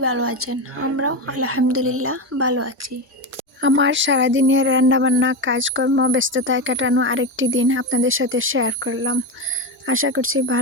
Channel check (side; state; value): both; normal; correlation 0.16